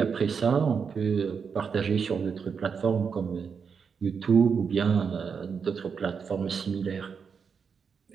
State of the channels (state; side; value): quieter; left; 6.1 dB